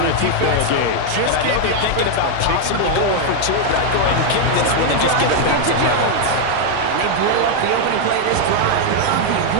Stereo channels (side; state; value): both; different; correlation 0.00